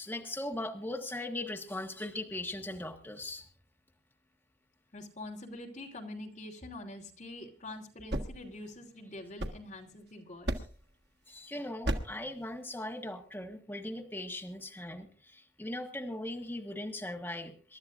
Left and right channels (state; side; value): normal; both; correlation 0.62